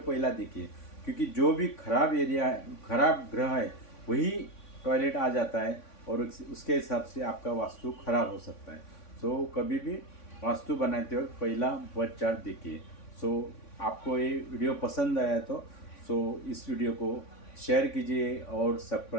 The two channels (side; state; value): right; late; 3.5 ms